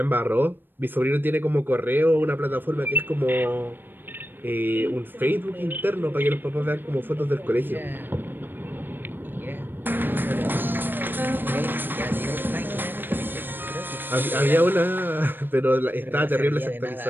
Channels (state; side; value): late; left; 0.095 ms